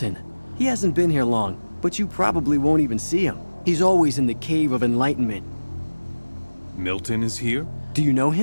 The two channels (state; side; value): inverted; both; correlation -1.00